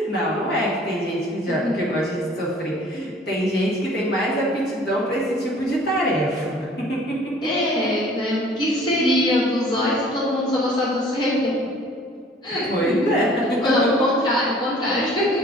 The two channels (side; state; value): both; normal; correlation 0.52